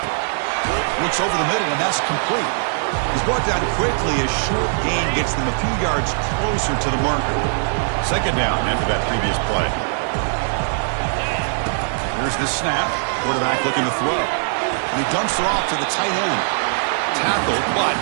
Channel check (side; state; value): left; silent; digital silence